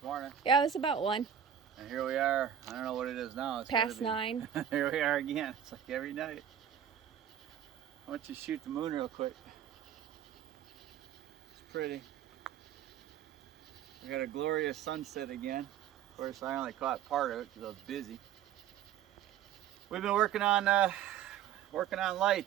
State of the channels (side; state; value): left; quieter; 9.4 dB